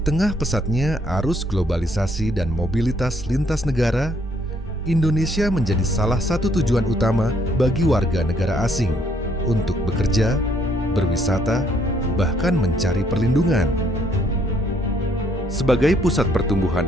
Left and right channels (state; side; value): normal; both; correlation 0.68